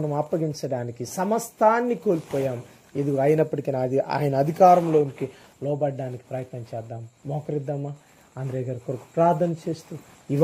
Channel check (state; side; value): identical; both; correlation 1.00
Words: అప్పగించడానికి సమస్తాన్ని కోల్పోయాం. ఇది అయినప్పటికీ ఆయన అధికారంలోనికి లోబడ్డానికి ప్రయత్నం చేద్దాం. మోకరిద్దామా? ఆంధ్రే గారి కొరకు ప్రార్థన చేస్తూ ఈ